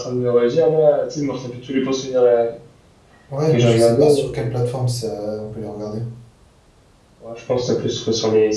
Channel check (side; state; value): both; identical; correlation 1.00